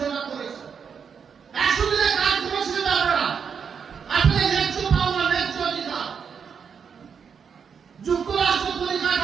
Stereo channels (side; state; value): left; quieter; 6.7 dB